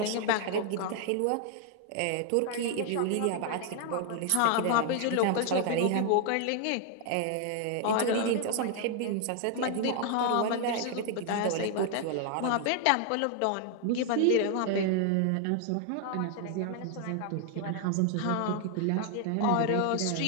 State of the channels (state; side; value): different; both; correlation 0.00